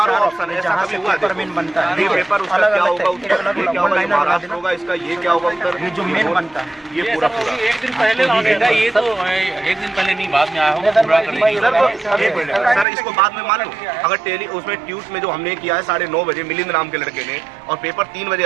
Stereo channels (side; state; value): left; drops out; at 12.9 s